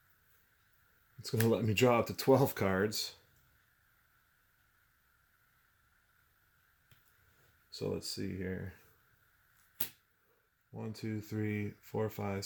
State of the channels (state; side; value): identical; both; correlation 1.00